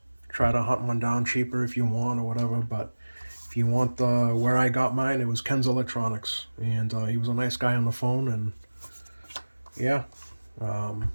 try to hunt one down cheaper if you want or whatever, but if you want where I got mine, it was Ken's Electronics, and he was a nice guy on the phone, and yeah,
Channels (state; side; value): inverted; both; correlation -1.00